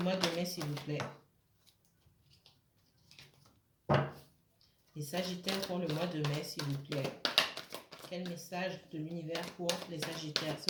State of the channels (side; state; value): both; identical; correlation 1.00